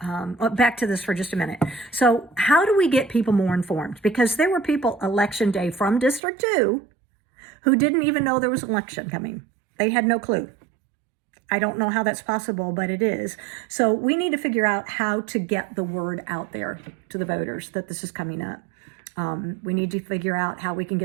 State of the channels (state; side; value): drops out; left; at 6.2 s